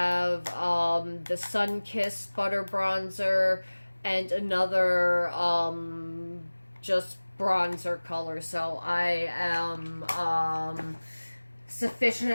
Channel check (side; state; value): both; inverted; correlation -1.00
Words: the Sun-Kissed butter bronzer and another just bronzer color. So I am